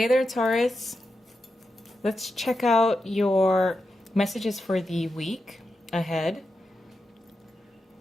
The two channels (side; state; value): both; normal; correlation 0.88